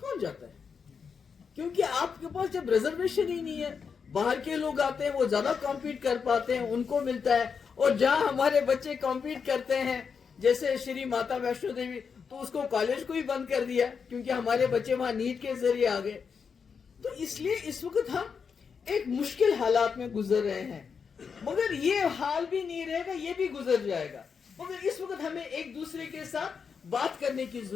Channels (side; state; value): right; quieter; 6.1 dB